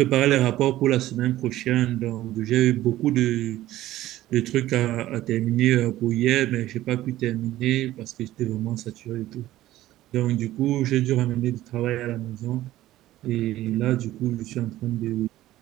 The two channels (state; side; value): quieter; left; 15.0 dB